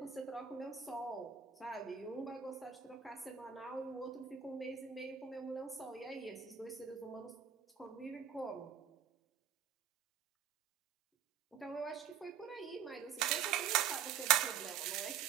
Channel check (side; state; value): left; quieter; 8.2 dB